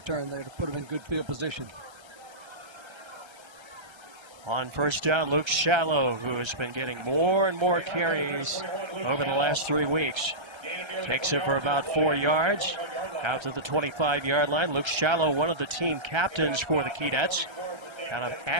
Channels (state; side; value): late; left; 1.3 ms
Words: there to put them in good field position. On first down, Luke Shallow, who has been getting more and more carries over the last 3 weeks. Takes it for about 4 yards out to the 25-yard line. Luke Shallow, one of the team captains for the Keydets out of